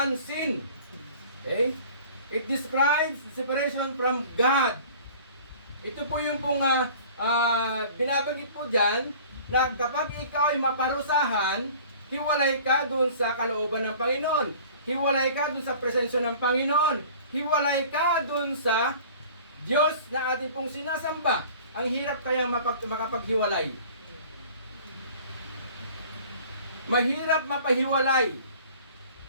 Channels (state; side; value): inverted; both; correlation -0.46